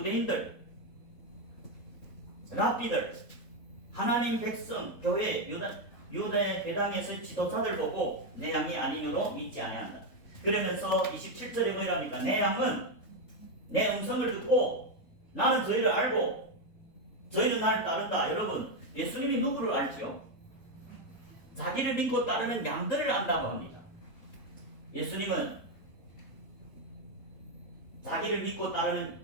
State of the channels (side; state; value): right; late; 3.7 ms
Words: 랍비들, 하나님 백성, 교회, 유대 회당에서 지도자들 보고 내 양이 아니므로 믿지 아니한다. 그러면서 27절에 뭐랍니까? 내 양은 내 음성을 듣고 나는 저희를 알고 저희는 나를 따른다. 여러분, 예수님이 누구를 알지요? 자기를 믿고 따르는 양들을 안다고 합니다. 예수님은 자기를 믿고 따르는